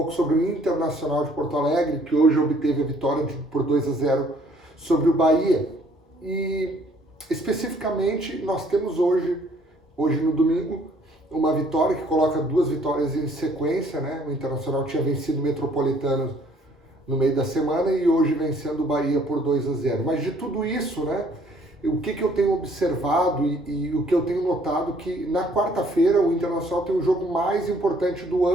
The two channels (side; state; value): both; normal; correlation 0.61